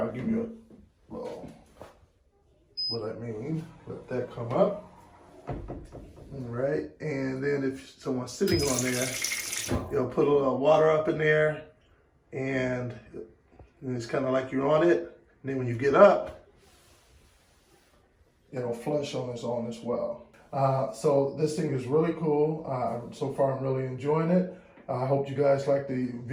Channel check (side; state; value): both; identical; correlation 1.00